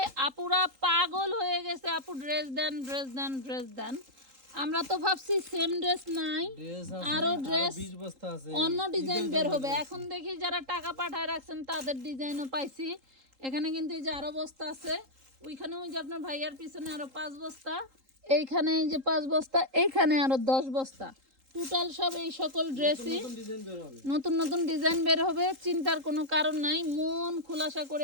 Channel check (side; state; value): left; late; 3.8 ms